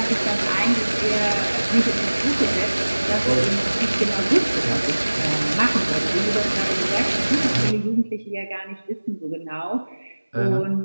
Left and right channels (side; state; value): both; inverted; correlation -1.00